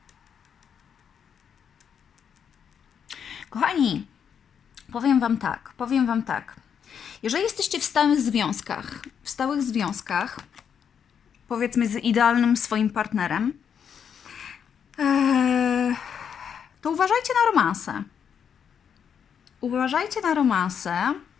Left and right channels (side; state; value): right; quieter; 7.7 dB